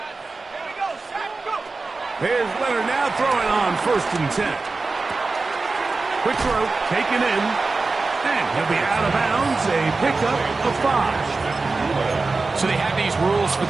Here's Leonard now throwing on 1st and 10. Quick throw, taken in, and he'll be out of bounds, a pickup of 5. So they have these rules for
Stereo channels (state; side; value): quieter; left; 3.8 dB